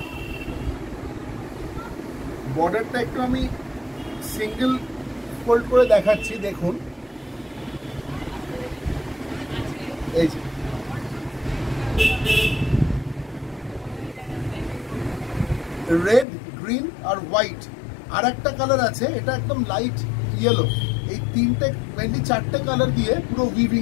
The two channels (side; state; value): right; drops out; at 16.2 s